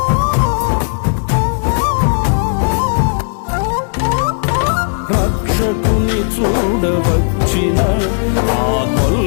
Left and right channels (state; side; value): silent; right; digital silence